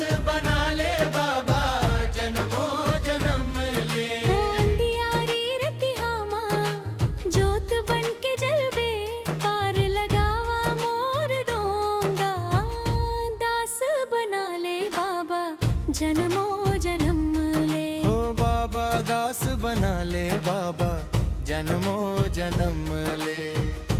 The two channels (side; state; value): both; identical; correlation 1.00